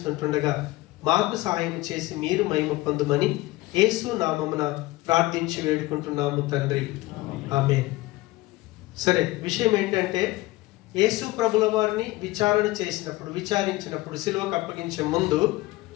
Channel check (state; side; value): quieter; right; 19.3 dB